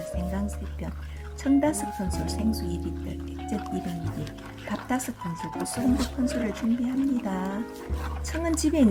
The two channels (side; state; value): both; identical; correlation 1.00